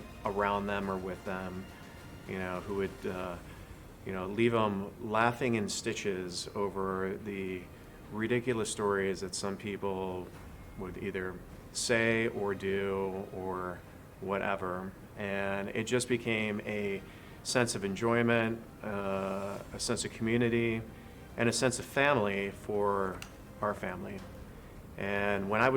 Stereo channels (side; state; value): both; identical; correlation 1.00